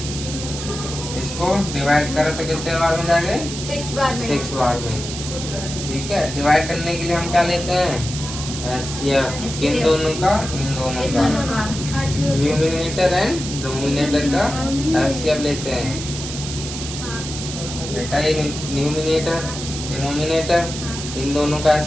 इसको डिवाइड करो तो कितने बार में जाएंगे? 6 बार में। ठीक है, डिवाइड करने के लिए हम क्या लेते हैं? एचसीएफ। किन दोनों का? इन दोनों का। न्यूमिनेटर एंड डिनोमिनेटर का एचसीएफ लेते हैं। बेटा ये न्यूमिनेटर डिनोमिनेटर इन दोनों का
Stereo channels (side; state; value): right; noise; hiss, 8 dB below the sound